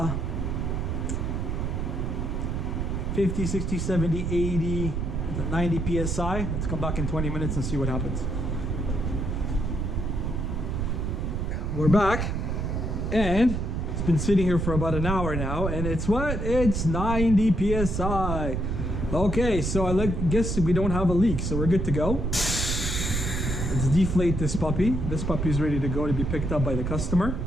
50, 60, 70, 80, 90 psi. Let's come back in 20 minutes and see what happens. We're back, and it's been sitting here for about an hour now, and it's what? It's 90 psi. Okay, so I guess we don't have a leak, so we're good to go. Let's deflate this puppy. This puppy is ready to go to be picked up by the customer.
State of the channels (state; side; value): noise; right; rumble, 1 dB below the sound